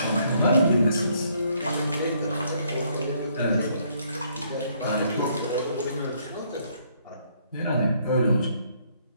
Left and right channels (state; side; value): inverted; both; correlation -0.69